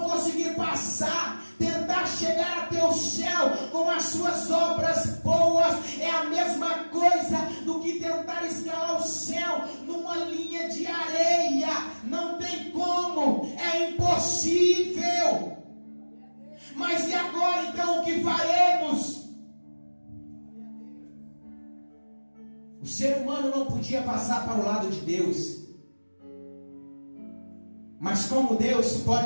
conseguir passar. Tentar chegar até o céu com as suas obras boas é a mesma coisa do que tentar escalar o céu numa linha de areia. Não tem como, é impossível. Mas e agora então o que faremos? O ser humano não podia passar para o lado de Deus, mas como Deus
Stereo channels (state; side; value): inverted; both; correlation -1.00